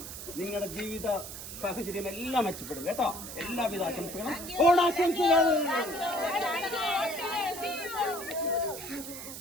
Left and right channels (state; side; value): noise; right; hiss, 10 dB below the sound